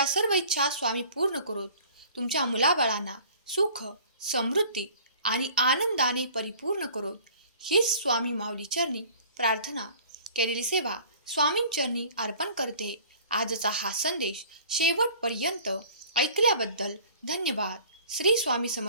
सर्व इच्छा स्वामी पूर्ण करोत. तुमच्या मुलाबाळांना सुख, समृद्धी आणि आनंदाने परिपूर्ण करोत. हीच स्वामी माऊली चरणी प्रार्थना, केलेली सेवा स्वामींचरणी अर्पण करते. आजचा हा संदेश शेवटपर्यंत ऐकल्याबद्दल धन्यवाद. श्री स्वामी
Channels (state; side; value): inverted; both; correlation -0.48